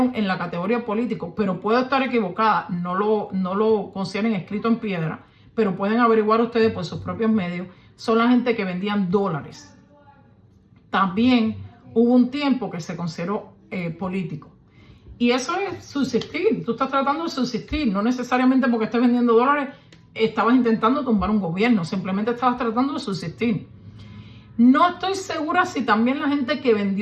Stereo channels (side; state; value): both; identical; correlation 1.00